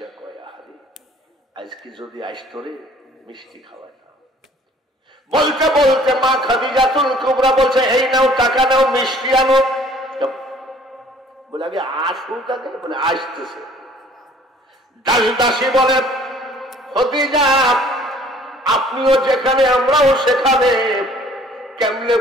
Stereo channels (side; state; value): both; normal; correlation 0.55